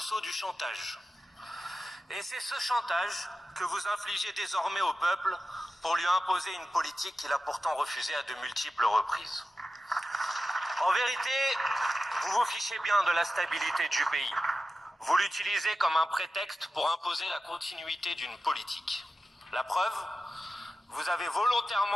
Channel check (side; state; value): both; normal; correlation 0.93